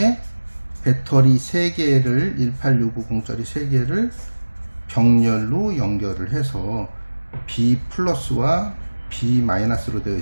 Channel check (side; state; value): both; inverted; correlation -1.00